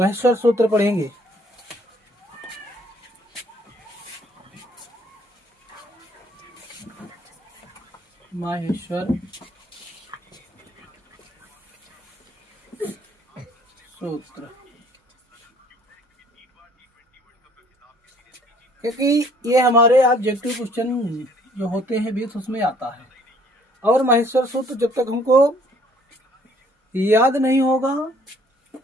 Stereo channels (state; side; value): normal; both; correlation 0.60